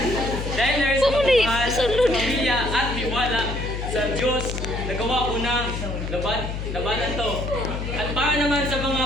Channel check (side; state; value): left; noise; hum, 5 dB below the sound